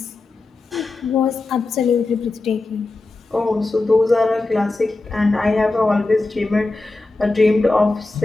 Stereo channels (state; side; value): quieter; right; 3.2 dB